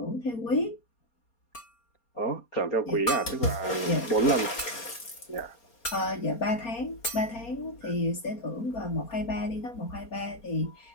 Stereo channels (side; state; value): right; late; 4.3 ms